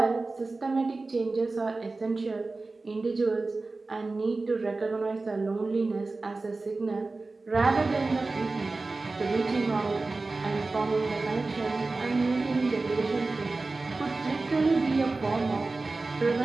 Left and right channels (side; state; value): left; quieter; 3.5 dB